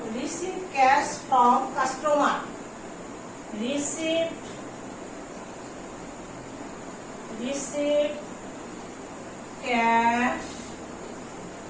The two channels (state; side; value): identical; both; correlation 1.00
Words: Receive cash from customer. Receive cash